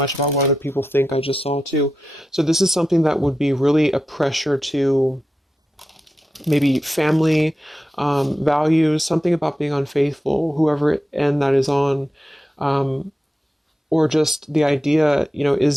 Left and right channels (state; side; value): normal; both; correlation 0.90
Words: about what other people think. I just saw too. So this is something that would be really a pressure to maybe family values, something about being unfaithful, whoever end that is on. Or just the idea,